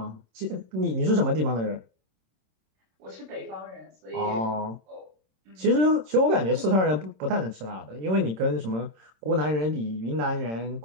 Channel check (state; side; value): late; left; 26 ms